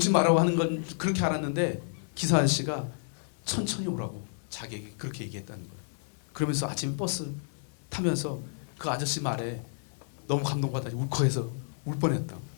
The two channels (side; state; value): right; silent; digital silence